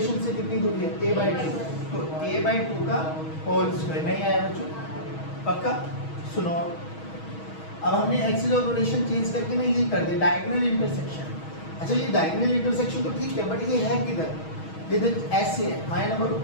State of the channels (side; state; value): right; late; 6.3 ms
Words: से कितनी दूरी है? a/2, तो a/2 का होल स्क्वायर। नहीं आया बच्चों? पक्का? सुनो अब हमने एक्सिस ऑफ रोटेशन चेंज करके ना ये कर दिया डायगोनल इंटरसेक्शन। अच्छा ये डायगोनल इंटरसेक्शन तो ठीक है, बट ये है किधर? ये तो ऐसे है, हाँ ना बोलो।